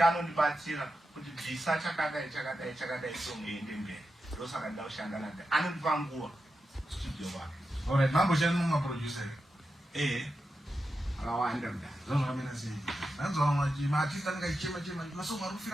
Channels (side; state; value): both; normal; correlation 0.89